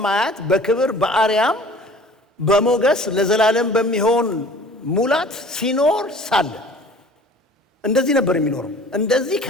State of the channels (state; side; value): normal; both; correlation 0.47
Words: በክብር በአርያም በሞገስ ለዘላለም በሚሆን ሙላት ሲኖር ሳለ እንደዚህ ነበር የሚኖረው። እንደዚህ